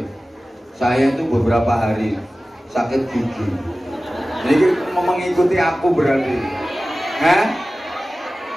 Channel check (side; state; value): both; normal; correlation 0.96